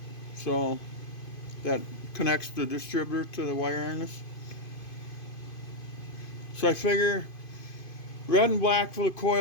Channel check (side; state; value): right; late; 2.5 ms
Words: So that connects the distributor to the wire harness. So I figure red and black for the